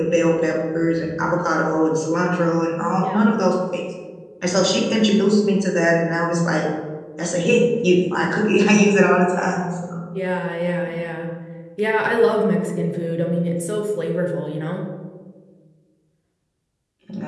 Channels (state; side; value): identical; both; correlation 1.00